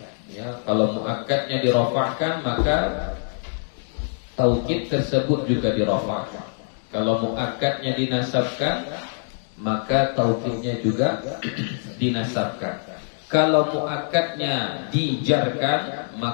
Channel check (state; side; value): silent; right; digital silence